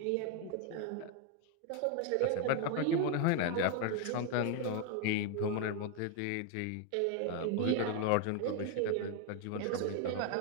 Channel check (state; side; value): different; both; correlation 0.01